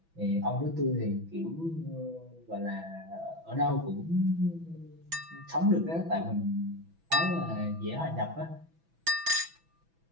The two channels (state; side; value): late; left; 6.1 ms